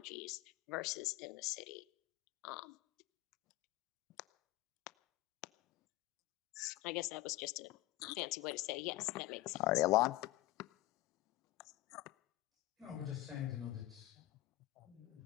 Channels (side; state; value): right; quieter; 17.3 dB